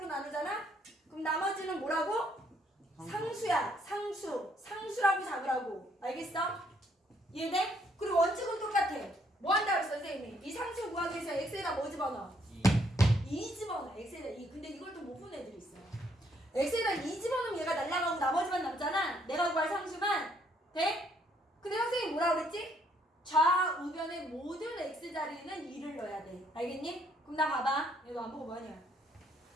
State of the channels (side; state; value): both; normal; correlation 0.68